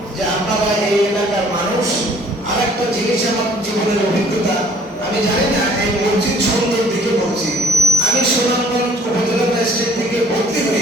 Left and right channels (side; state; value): both; normal; correlation 0.57